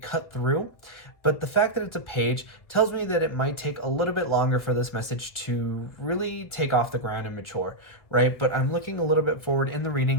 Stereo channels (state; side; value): late; right; 1.8 ms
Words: through. But the fact that it's a page tells me that it might take a little bit longer for this message to really take off the ground and mature, right? But I'm looking a little bit forward in the